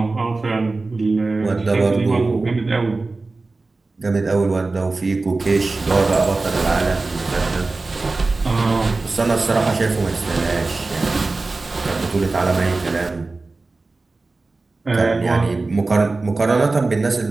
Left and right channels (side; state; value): left; quieter; 3.5 dB